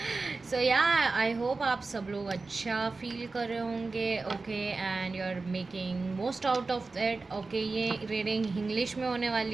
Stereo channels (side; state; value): left; quieter; 3.8 dB